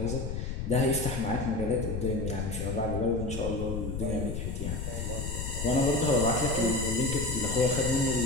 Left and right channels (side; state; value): left; noise; rumble, 4 dB below the sound